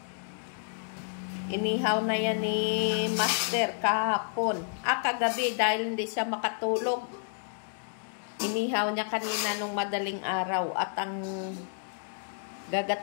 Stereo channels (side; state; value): right; silent; digital silence